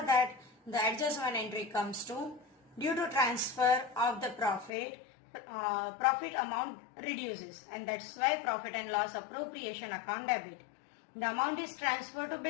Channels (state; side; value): drops out; right; at 4.7 s